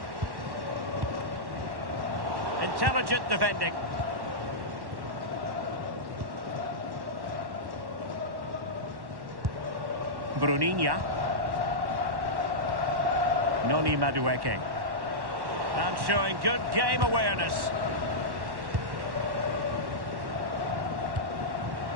Intelligent defending. Bruninha. Noni Madueke. And showing good game awareness.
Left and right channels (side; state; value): left; late; 1.1 ms